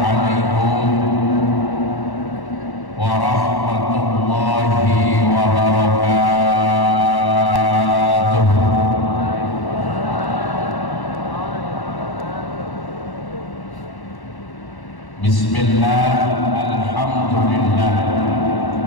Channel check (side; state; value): right; late; 1.1 ms